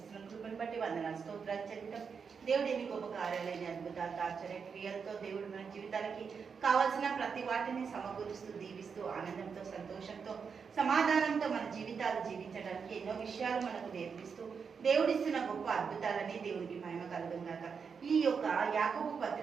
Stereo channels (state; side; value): quieter; left; 6.0 dB